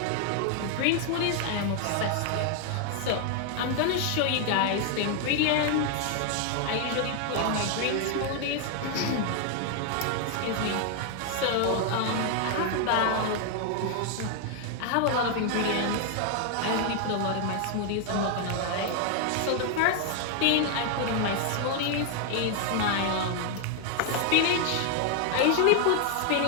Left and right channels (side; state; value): both; different; correlation 0.00